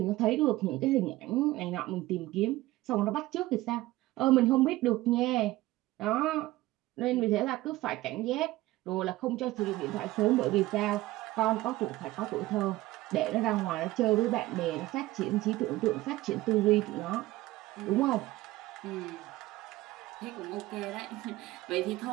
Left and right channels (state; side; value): quieter; left; 17.7 dB